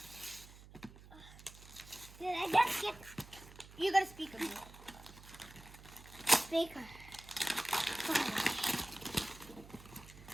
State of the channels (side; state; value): right; noise; hum, 18 dB below the sound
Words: Did I just get? You got a speaker. Speaker.